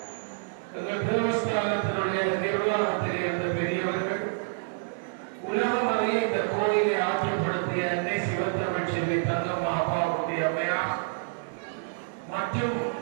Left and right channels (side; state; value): left; silent; digital silence